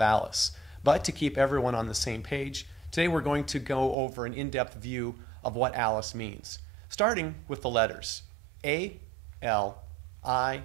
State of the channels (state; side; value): drops out; left; at 4.0 s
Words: ALICE, but to keep everyone on the same page, today we're going to go over an in-depth view of what ALICE means, starting with the letters A, L, I,